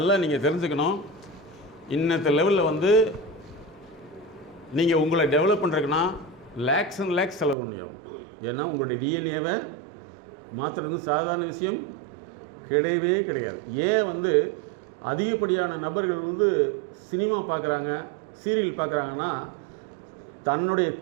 நீங்கள் தெரிஞ்சுக்கணும். இன்னத்த லெவலில் வந்து நீங்கள் உங்களை டெவலப் பண்ணுறதுக்குன்னா லேக்ஸ் அண்ட் லேக்ஸ் செலவு பண்ணியாகும். ஏன்னா உங்களுடைய டிஎன்ஏவை மாற்றுறது சாதாரண விஷயம் கிடையவே கிடையாது. ஏன் வந்து அதிகப்படியான நபர்கள் வந்து சினிமா பார்க்குறாங்க, சீரியல் பார்க்குறாங்கன்னா தன்னுடைய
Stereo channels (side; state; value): left; drops out; at 7.6 s